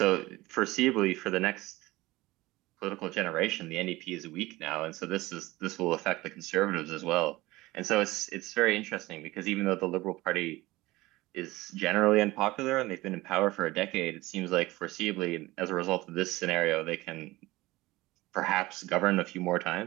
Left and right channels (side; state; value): left; quieter; 19.5 dB